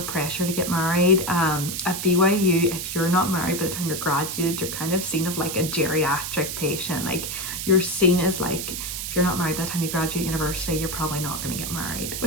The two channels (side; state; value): right; noise; hiss, 5 dB below the sound